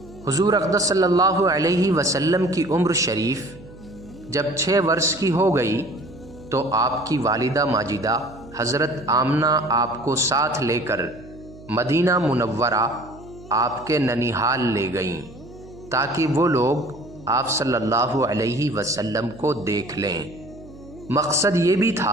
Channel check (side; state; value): right; noise; hum, 19 dB below the sound